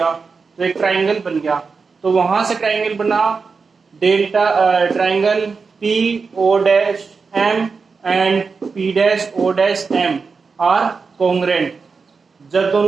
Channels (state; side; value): quieter; left; 4.9 dB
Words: तो एक ट्राइंगल बन गया। तो वहां से ट्राइंगल बना delta triangle P O dash M and P dash O dash M, are congruent. जब